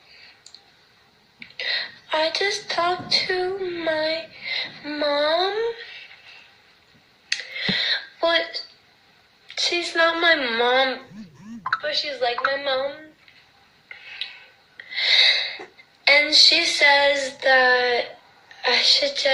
I just talked to my mom, but she's not my mom, but she's like my mom. And she says that I should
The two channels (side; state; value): both; identical; correlation 1.00